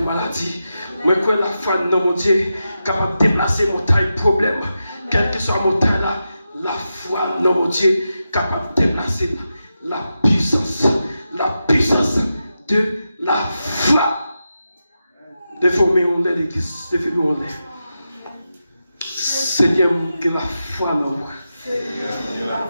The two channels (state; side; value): inverted; both; correlation -0.89